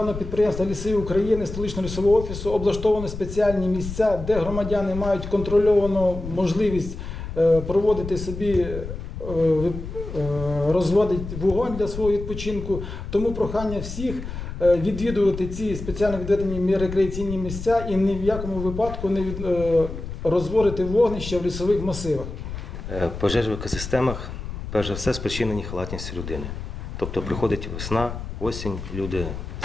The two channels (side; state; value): left; noise; rumble, 8 dB below the sound